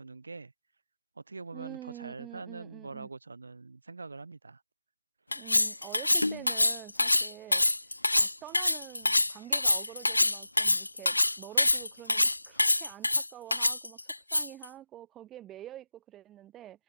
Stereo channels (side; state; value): both; inverted; correlation -0.97